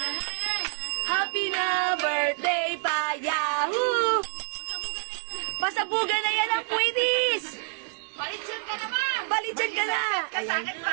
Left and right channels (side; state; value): left; silent; digital silence